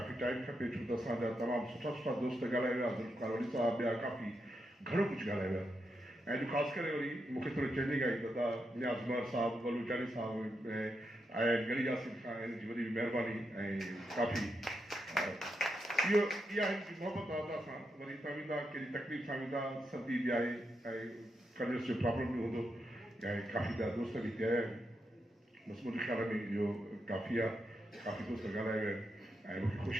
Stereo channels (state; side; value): normal; both; correlation 0.84